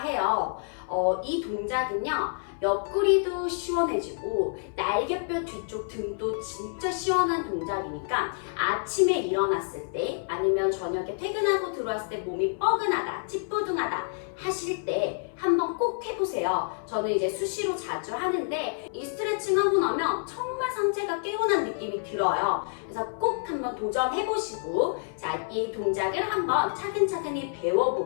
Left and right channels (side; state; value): right; silent; 59 dB below the other